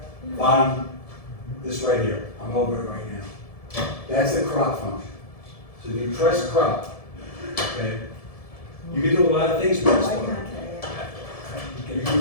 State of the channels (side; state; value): right; late; 1.7 ms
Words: Bottom, this right here, I'm over it right now. That's the crop function. So if you press crop, okay, you can do a lot of things with this one. You can